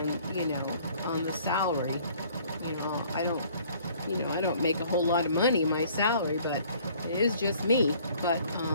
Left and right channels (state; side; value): inverted; both; correlation -0.56